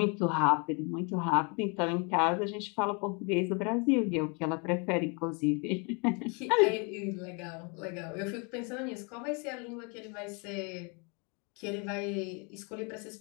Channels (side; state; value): right; quieter; 33.8 dB